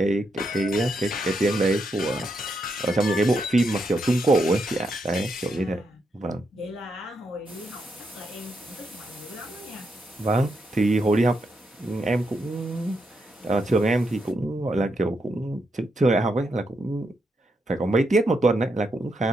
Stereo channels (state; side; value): normal; both; correlation 0.81